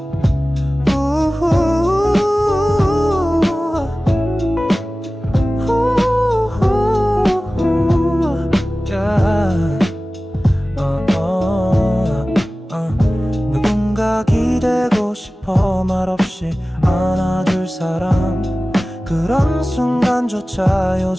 누군가 기대고 싶어 말없이 안아줄 사람. 그런 순간조차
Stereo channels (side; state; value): both; normal; correlation 0.97